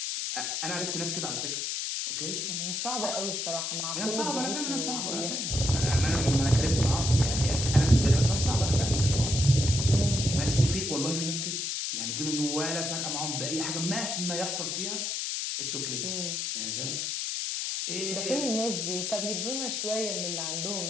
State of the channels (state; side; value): noise; left; hiss, 1 dB below the sound